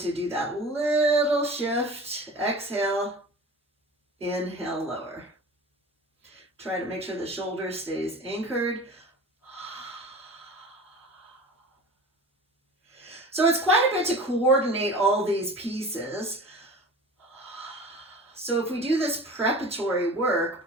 do that little shift. Exhale, inhale, lower. Try to make sure the shoulder stays anchored. So it's quite a bit to coordinate all these pieces. So if we do this preparatory work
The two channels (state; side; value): normal; both; correlation 0.38